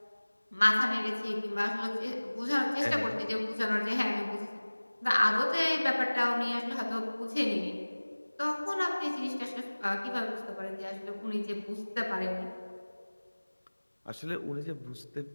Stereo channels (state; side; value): inverted; both; correlation -1.00